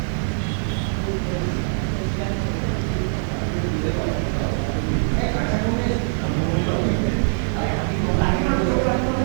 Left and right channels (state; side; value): silent; left; digital silence